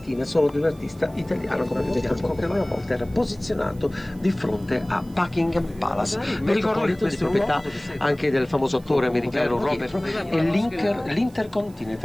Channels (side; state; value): right; noise; hiss, 27 dB below the sound